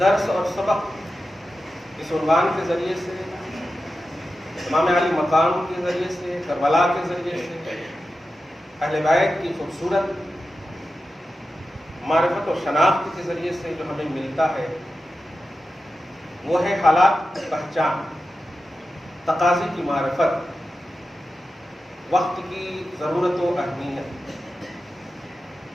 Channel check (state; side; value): normal; both; correlation 0.92